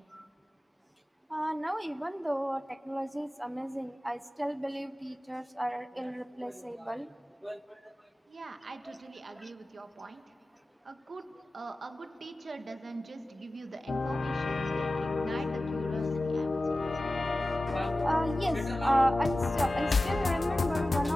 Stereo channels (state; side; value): normal; both; correlation 0.95